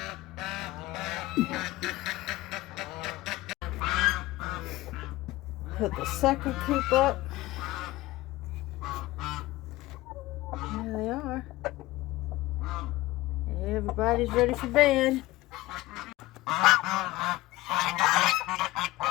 Put the second coop up. There they are. Everybody's ready for bed.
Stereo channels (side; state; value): right; quieter; 18.6 dB